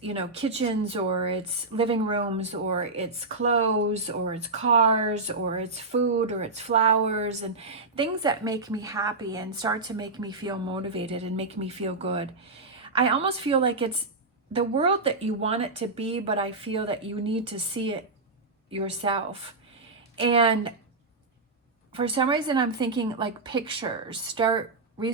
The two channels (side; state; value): left; quieter; 3.5 dB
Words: kitchens, or it's living rooms, or it's clothes, or it's cars, or it's food, or it's flowers, and things that make me happy and start to make me feel motivated and make me feel good. I almost feel like it's the world that you want it to be, but I feel that you need to see it yourself. And for some reason, I'm thinking like pictures. Start